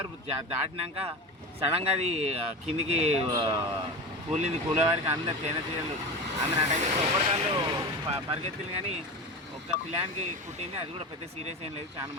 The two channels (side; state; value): both; normal; correlation 0.26